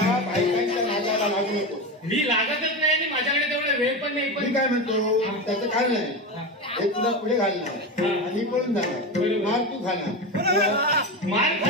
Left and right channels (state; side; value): normal; both; correlation 0.20